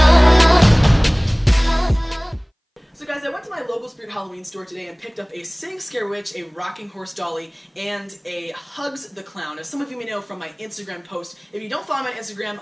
So guys, I went to my local Spirit Halloween store today and picked up a Sitting Scare Witch, a rocking horse dolly, and a Hugs the Clown. As some of you may know from my Instagram post, if you don't follow my Instagram,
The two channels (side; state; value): both; identical; correlation 1.00